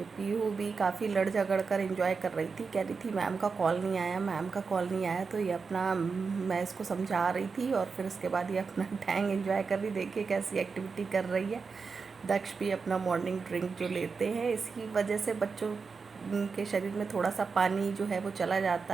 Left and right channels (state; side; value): quieter; left; 5.0 dB